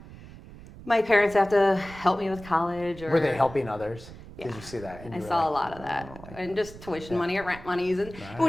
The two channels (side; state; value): right; noise; rumble, 17 dB below the sound